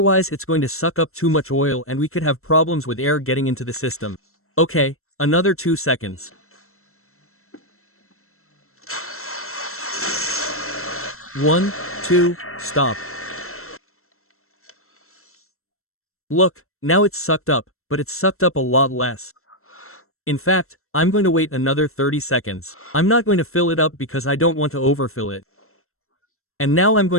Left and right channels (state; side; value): late; right; 0.62 ms